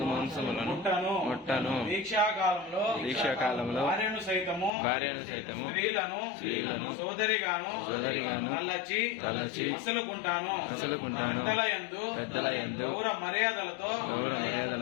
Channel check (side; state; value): right; drops out; at 4.7 s